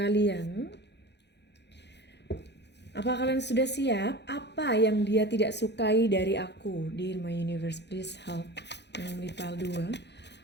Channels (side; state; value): right; late; 0.50 ms